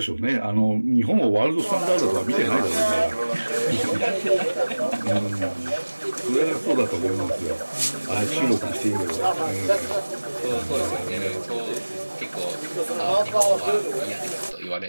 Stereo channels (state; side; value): inverted; both; correlation -1.00